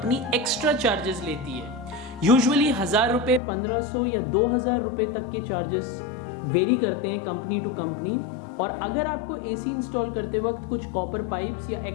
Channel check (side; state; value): right; drops out; at 3.4 s